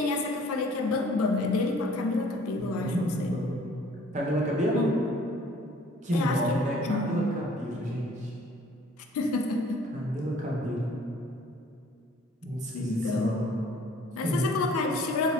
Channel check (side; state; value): both; normal; correlation 0.54